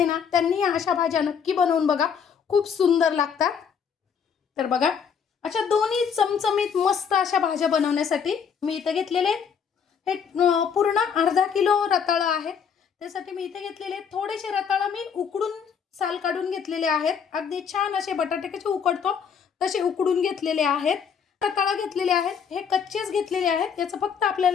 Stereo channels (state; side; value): quieter; right; 7.0 dB